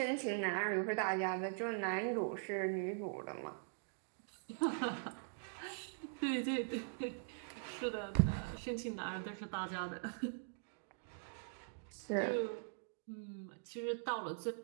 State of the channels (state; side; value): silent; left; digital silence